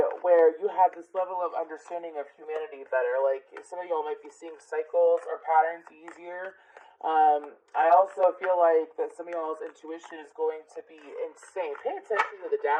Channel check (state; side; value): identical; both; correlation 1.00